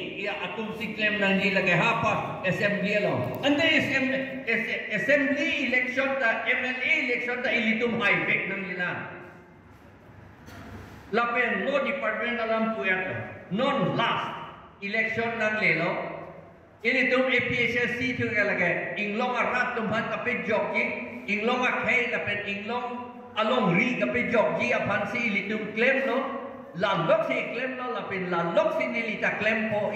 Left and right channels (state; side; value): identical; both; correlation 1.00